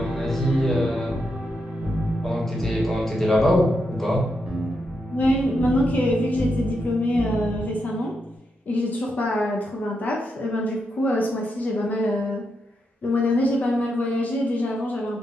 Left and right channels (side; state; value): both; normal; correlation 0.83